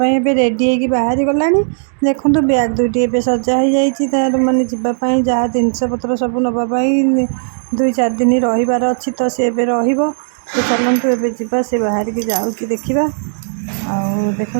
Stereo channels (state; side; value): silent; left; digital silence